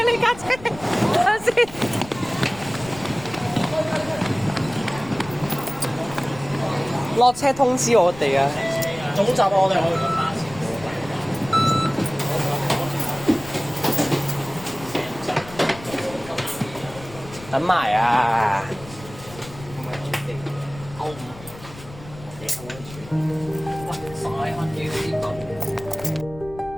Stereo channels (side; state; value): left; noise; rumble, 17 dB below the sound